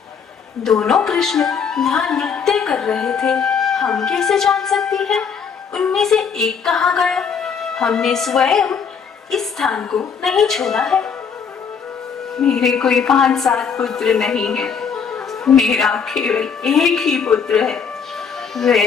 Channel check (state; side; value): quieter; right; 6.5 dB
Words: दोनों कृष्ण यहाँ नृत्य कर रहे थे। हम कैसे जान सकती हैं उनमें से एक कहाँ गया? हमने स्वयं इस स्थान को नहीं छोड़ा है। मेरे कोई 5-7 पुत्र नहीं है। मेरा केवल एक ही पुत्र है।